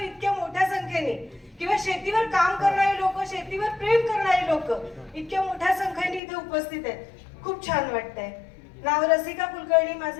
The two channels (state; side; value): drops out; right; at 6.2 s